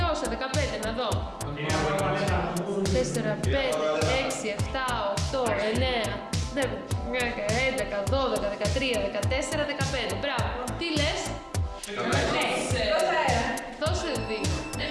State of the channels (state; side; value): identical; both; correlation 1.00